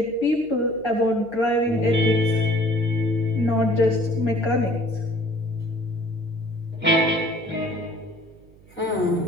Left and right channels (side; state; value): right; noise; hum, 25 dB below the sound